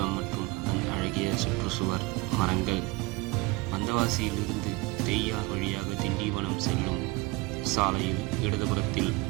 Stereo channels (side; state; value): left; quieter; 23.1 dB